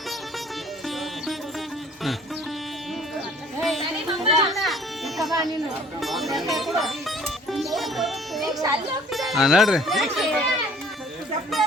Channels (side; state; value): both; normal; correlation 0.54